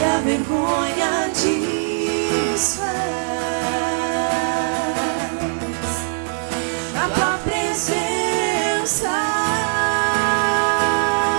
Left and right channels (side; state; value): left; silent; digital silence